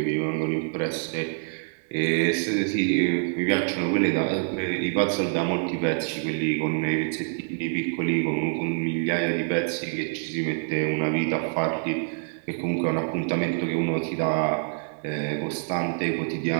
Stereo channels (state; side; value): silent; left; 55 dB below the other